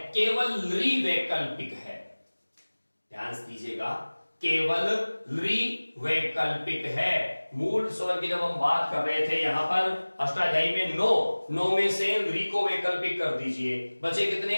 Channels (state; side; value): inverted; both; correlation -1.00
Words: केवल री वैकल्पिक है। ध्यान से दीजिएगा, केवल री वैकल्पिक है। मूल स्वर की जब हम बात कर रहे थे यहां पर अष्टाध्यायी में 9 में से री को वैकल्पिक कर दीजिए, बचे